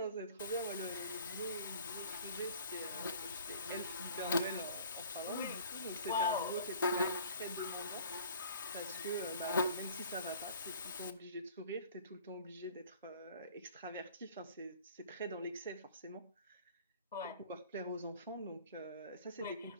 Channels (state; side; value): inverted; both; correlation -0.48